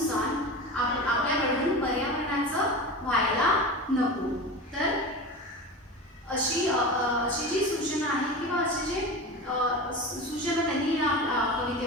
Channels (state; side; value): normal; both; correlation 0.29